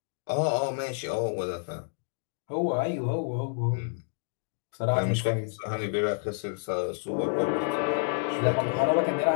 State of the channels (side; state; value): right; silent; digital silence